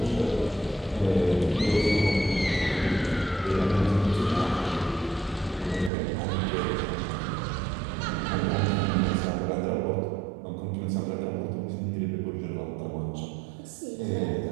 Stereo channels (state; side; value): drops out; left; at 5.9 s